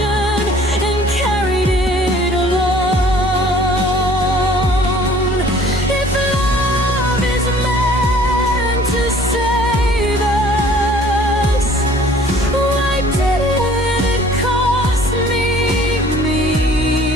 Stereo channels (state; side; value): normal; both; correlation 0.53